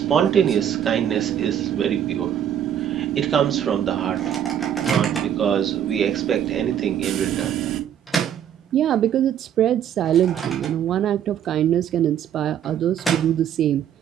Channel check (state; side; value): quieter; left; 9.6 dB